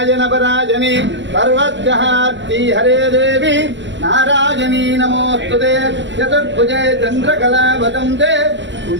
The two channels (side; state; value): left; late; 0.53 ms